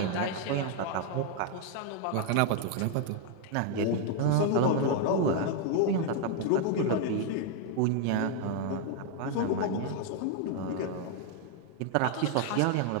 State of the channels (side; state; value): both; different; correlation 0.00